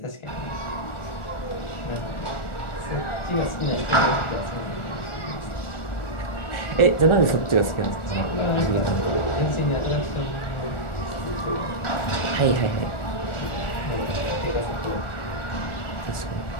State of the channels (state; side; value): late; right; 1.4 ms